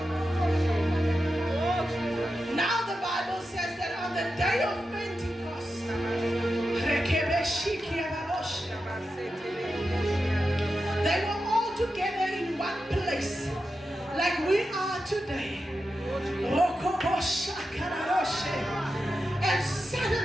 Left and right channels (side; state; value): both; normal; correlation 0.90